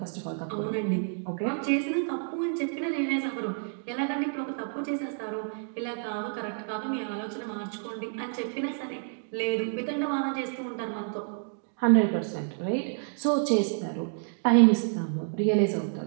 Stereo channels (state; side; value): silent; left; 58 dB below the other